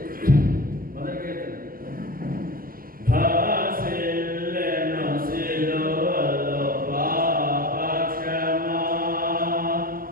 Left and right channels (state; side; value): late; left; 0.42 ms